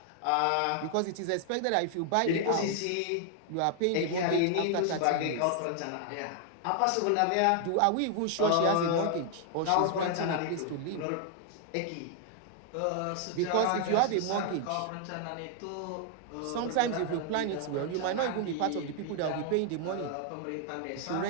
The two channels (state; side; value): different; both; correlation 0.00